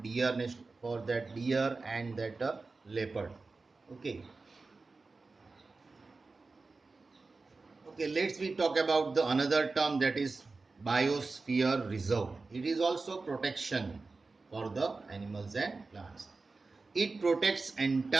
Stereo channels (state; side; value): quieter; left; 3.8 dB